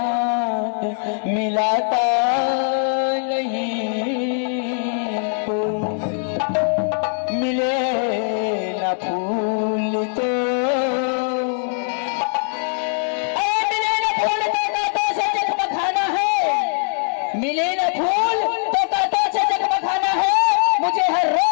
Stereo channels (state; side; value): silent; right; 63 dB below the other